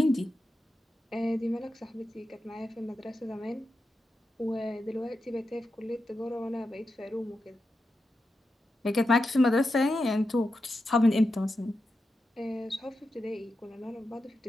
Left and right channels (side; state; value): both; normal; correlation 0.89